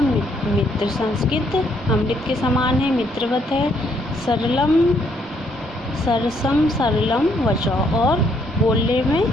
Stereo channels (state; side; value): normal; both; correlation 0.70